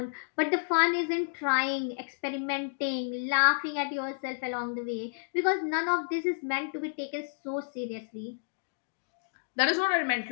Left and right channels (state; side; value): silent; right; digital silence